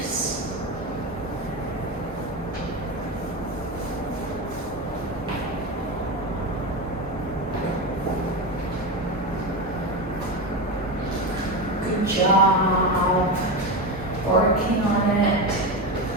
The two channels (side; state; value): both; normal; correlation 0.18